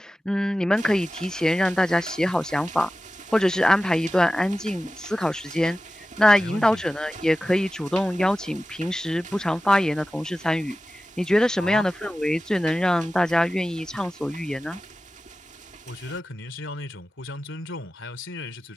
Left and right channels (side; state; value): both; normal; correlation 0.95